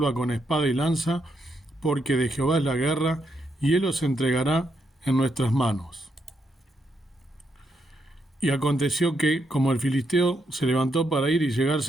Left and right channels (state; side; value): normal; both; correlation 0.79